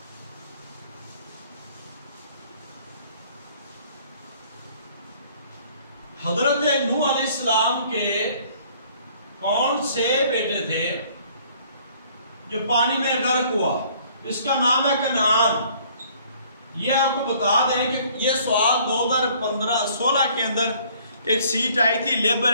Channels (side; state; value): both; inverted; correlation -0.58